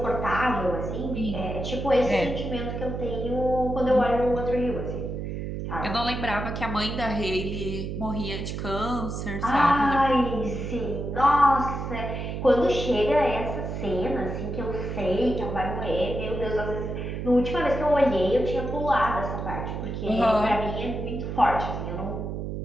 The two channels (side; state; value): right; noise; hum, 5 dB below the sound